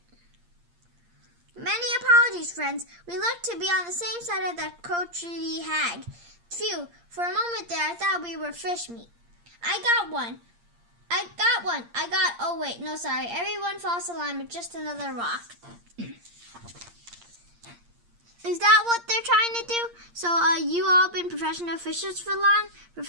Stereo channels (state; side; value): late; left; 8.6 ms